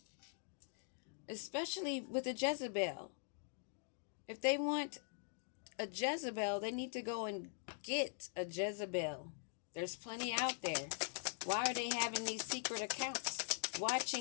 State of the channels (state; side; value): silent; right; digital silence